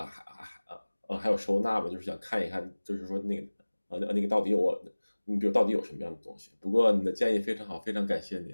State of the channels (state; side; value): inverted; both; correlation -1.00